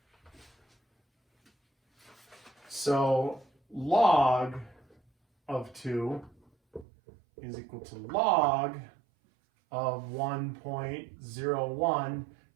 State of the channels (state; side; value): drops out; left; at 6.9 s